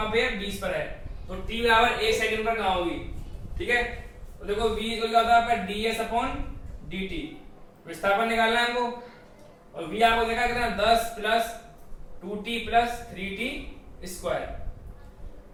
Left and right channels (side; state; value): both; identical; correlation 1.00